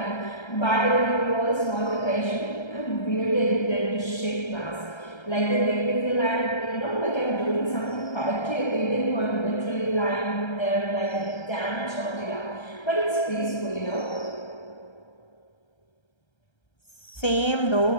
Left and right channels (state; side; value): late; right; 1.3 ms